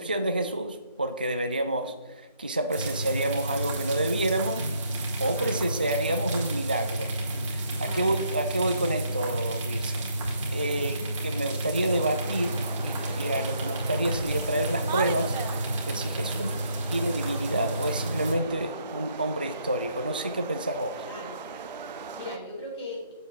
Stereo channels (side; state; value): both; inverted; correlation -0.71